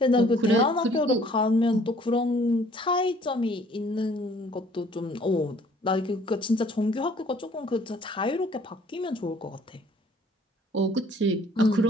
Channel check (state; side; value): normal; both; correlation 0.57